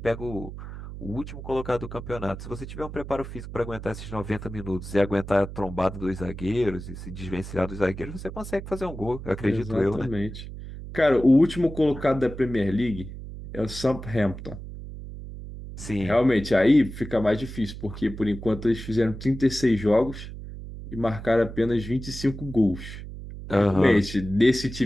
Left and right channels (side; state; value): right; noise; hum, 11 dB below the sound